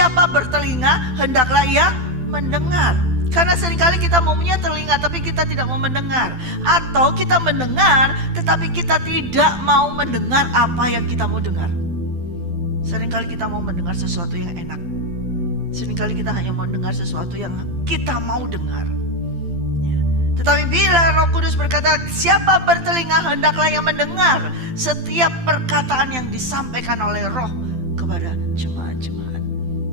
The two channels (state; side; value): late; left; 12 ms